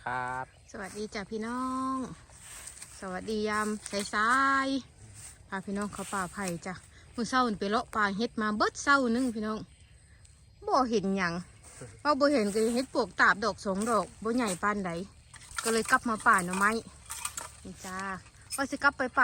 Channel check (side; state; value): both; identical; correlation 1.00